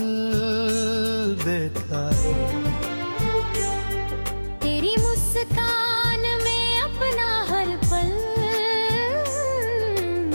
देखा, तेरी मुस्कान में अपना हर पल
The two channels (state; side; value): inverted; both; correlation -1.00